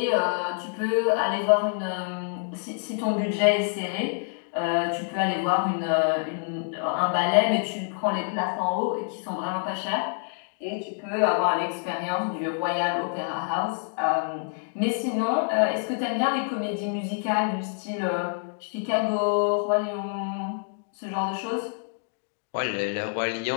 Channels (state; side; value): silent; right; 60 dB below the other